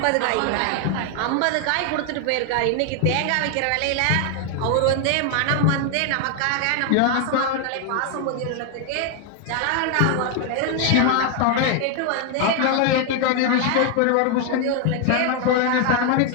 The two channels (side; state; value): both; different; correlation 0.00